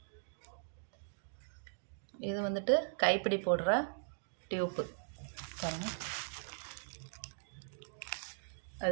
இது வந்துட்டு கைப்பிடி போடுற டியூப்பு பாருங்க.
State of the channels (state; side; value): silent; left; digital silence